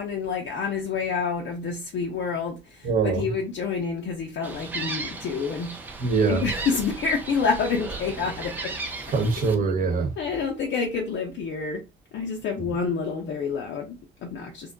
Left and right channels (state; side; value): normal; both; correlation 0.33